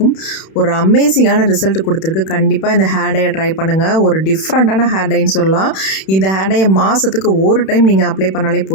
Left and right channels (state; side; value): late; right; 31 ms